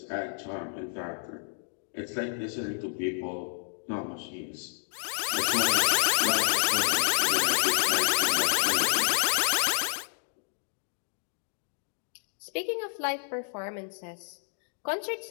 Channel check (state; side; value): silent; right; digital silence